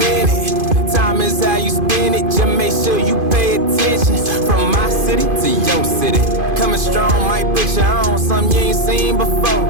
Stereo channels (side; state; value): left; late; 2.5 ms